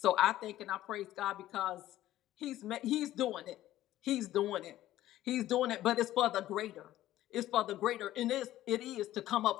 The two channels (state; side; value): quieter; right; 14.1 dB